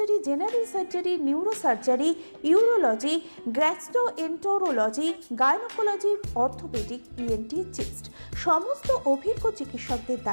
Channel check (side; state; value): both; inverted; correlation -1.00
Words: general surgery, neuro surgery, urology, gastroenterology, gynaecology, orthopaedic, ENT, chest সমস্ত অভিজ্ঞ চিকিৎসকদের